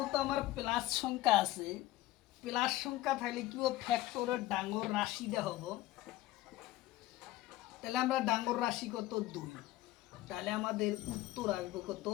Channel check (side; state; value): right; quieter; 16.3 dB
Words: আমার প্লাস সংখ্যা আছে, প্লাস সংখ্যা থাকলে কি ফ্যাক্টরের ডাঙর রাশিটা হবো, তাহলে আমরা ডাঙর রাশি কত 2, তাহলে আমাদের উত্তর আসবে কত